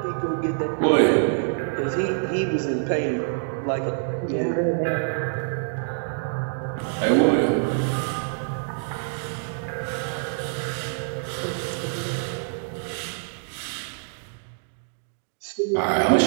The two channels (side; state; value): left; silent; digital silence